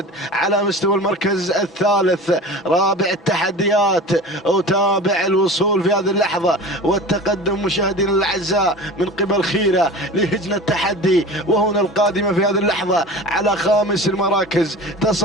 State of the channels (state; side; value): normal; both; correlation 0.35